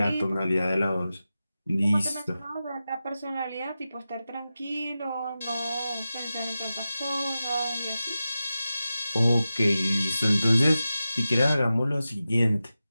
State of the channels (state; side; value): inverted; both; correlation -0.93